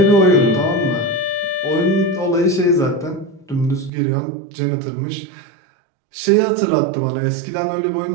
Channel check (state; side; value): drops out; left; at 3.9 s